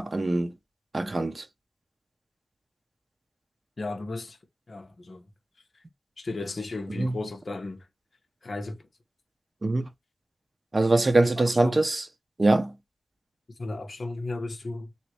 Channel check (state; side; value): normal; both; correlation 0.97